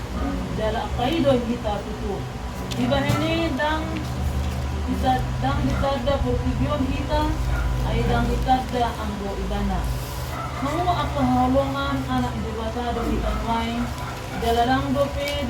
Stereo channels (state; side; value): identical; both; correlation 1.00